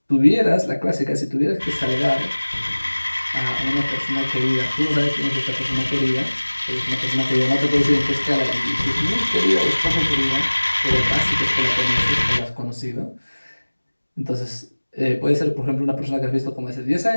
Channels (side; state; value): both; inverted; correlation -1.00